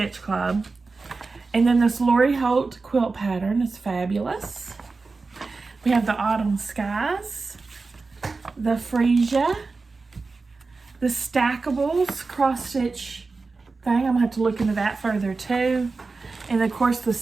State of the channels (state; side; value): quieter; left; 4.0 dB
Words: club. And then this Lori Holt quilt pattern is fabulous. We have the autumn skies, the Freesia, the Stackables cross stitch thing. I'm gonna have to look into that further too. And of course the